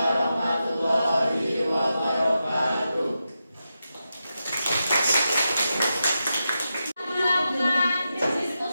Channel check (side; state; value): both; inverted; correlation -0.89